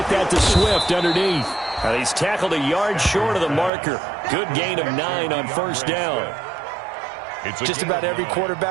that to Swift underneath. He's tackled a yard short of the marker. Good gain of 9 on first down. Just about every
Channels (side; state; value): left; drops out; at 3.7 s